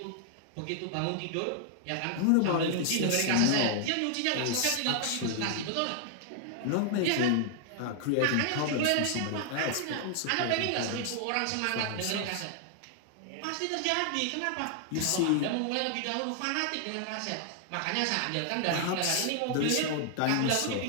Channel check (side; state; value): both; different; correlation 0.00